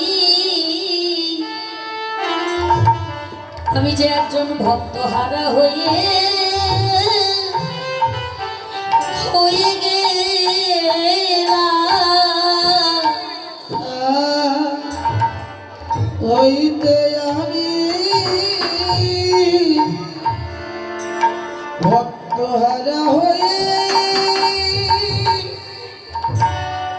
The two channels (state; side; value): identical; both; correlation 1.00